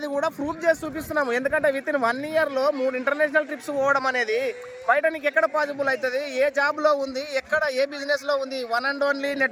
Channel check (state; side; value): identical; both; correlation 1.00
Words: కూడా ప్రూఫ్ చేసి చూపిస్తున్నాము. ఎందుకంటే విత్ ఇన్ 1 ఇయర్లో 3 ఇంటర్నేషనల్ ట్రిప్స్ పోవడం అనేది బయట నీకు ఎక్కడ పాసిబుల్ అవుతుంది? ఏ జాబ్లో ఉంది, ఎక్కడ ఏ బిజినెస్లో ఉంది? One and only